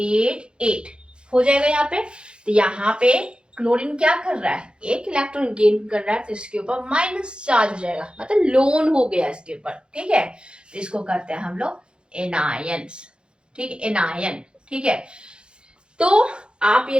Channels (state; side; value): late; left; 0.053 ms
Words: 8 हो जाएगा यहाँ पे। तो यहाँ पे क्लोरीन क्या कर रहा है, एक इलेक्ट्रॉन गेन कर रहा है, तो इसके ऊपर माइनस चार्ज हो जाएगा, मतलब लोन हो गया इसके ऊपर। ठीक है। तो इसको कहते हैं हम लोग एनायंस। ठीक है, एनायन। ठीक है। तो आप